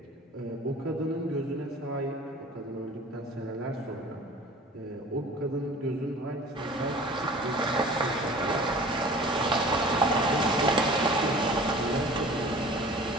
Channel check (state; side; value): normal; both; correlation 0.44